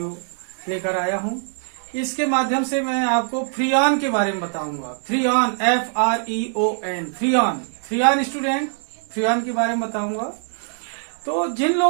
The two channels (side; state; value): left; silent; 64 dB below the other